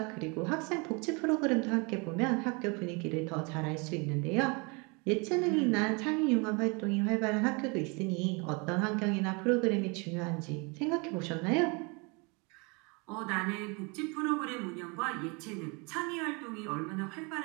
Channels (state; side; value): quieter; left; 30.4 dB